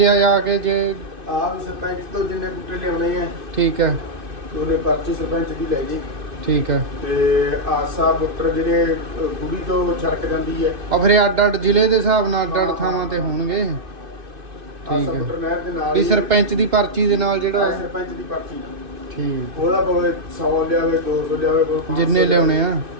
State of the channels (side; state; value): left; late; 2.6 ms